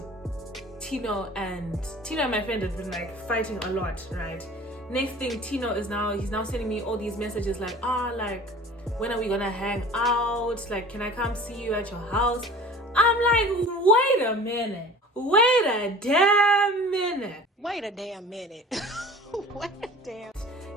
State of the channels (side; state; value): both; normal; correlation 0.42